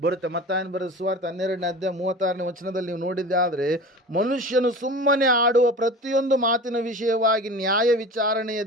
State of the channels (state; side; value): normal; both; correlation 0.35